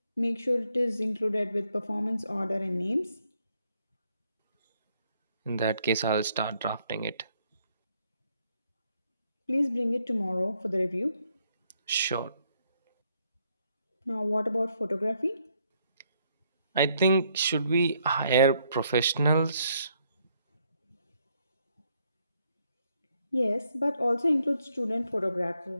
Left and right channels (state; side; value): inverted; both; correlation -0.72